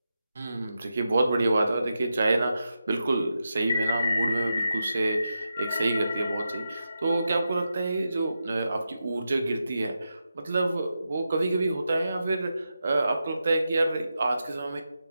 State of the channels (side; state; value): both; inverted; correlation -0.88